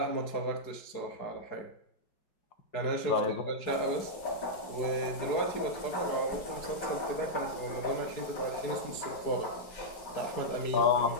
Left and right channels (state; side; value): late; right; 4.7 ms